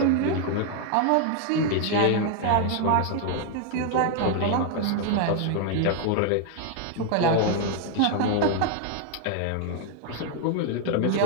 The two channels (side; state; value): both; different; correlation 0.00